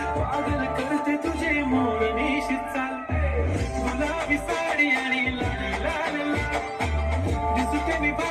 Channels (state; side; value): identical; both; correlation 1.00